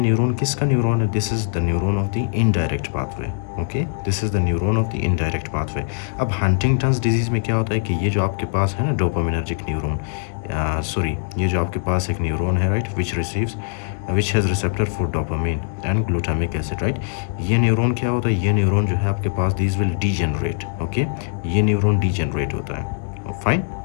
किसका न्यूरॉन है? This is the neuron of the indirect pathway. Okay, this is the neuron of the indirect pathway. अब हंटिंगटन्स डिजीज़ में क्या होता है कि ये जो आपके पास है ना डोपामिनर्जिक न्यूरॉन, सॉरी, ये जो आपके पास एक न्यूरॉन है, right, which has receptor for dopamine and glutamic acid, right. ये न्यूरॉन क्या होता है? ये न्यूरॉन जो है आपके पास, दिस विल डीजेनरेट. ओके, ये न्यूरॉन डीजेनरेट होता है. फाइन.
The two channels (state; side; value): silent; right; digital silence